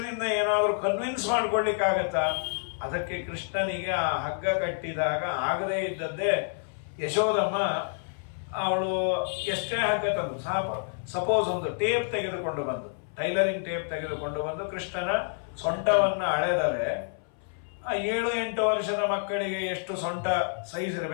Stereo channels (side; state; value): right; silent; 58 dB below the other